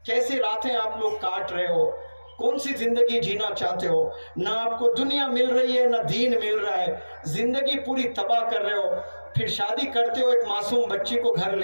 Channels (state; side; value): inverted; both; correlation -1.00